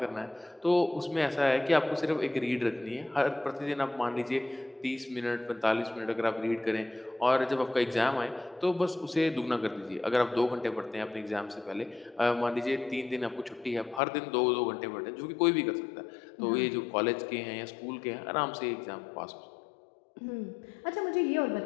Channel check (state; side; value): drops out; right; at 14.0 s